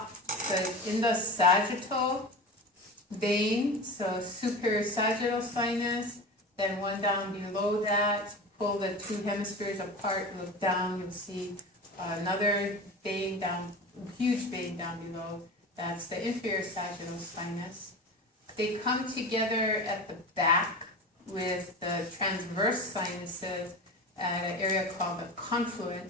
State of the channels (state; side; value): normal; both; correlation 0.30